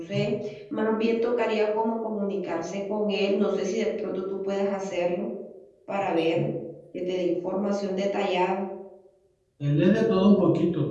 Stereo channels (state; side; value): identical; both; correlation 1.00